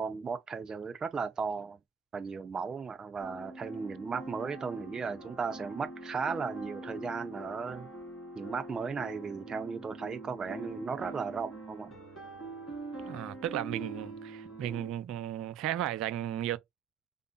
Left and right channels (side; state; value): left; quieter; 5.7 dB